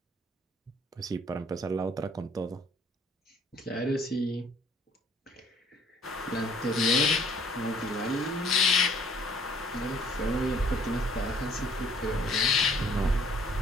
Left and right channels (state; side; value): normal; both; correlation 0.58